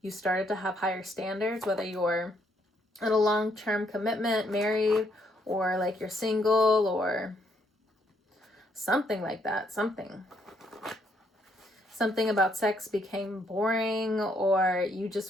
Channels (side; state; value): both; normal; correlation 0.71